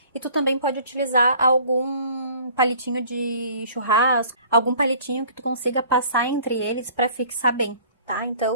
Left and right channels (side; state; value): both; inverted; correlation -0.51